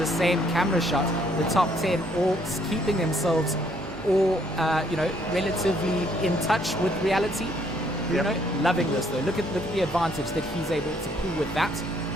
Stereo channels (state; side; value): normal; both; correlation 0.67